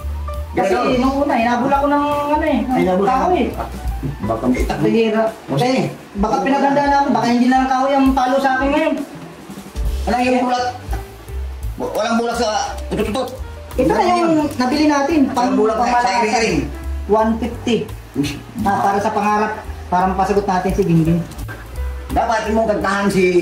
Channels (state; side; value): identical; both; correlation 1.00